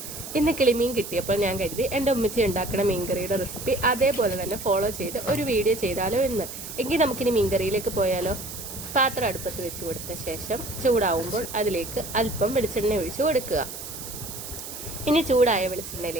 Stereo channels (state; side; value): noise; right; hiss, 10 dB below the sound